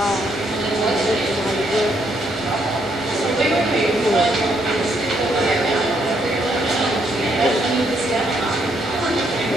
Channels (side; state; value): both; normal; correlation 0.73